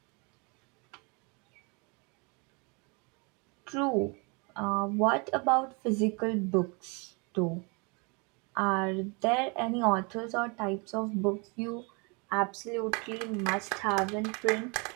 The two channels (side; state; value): left; quieter; 31.5 dB